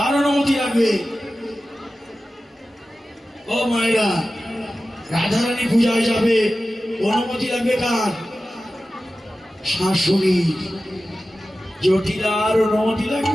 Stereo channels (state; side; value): normal; both; correlation 0.95